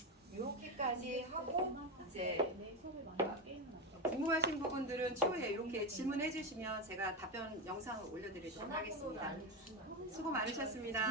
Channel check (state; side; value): normal; both; correlation 0.14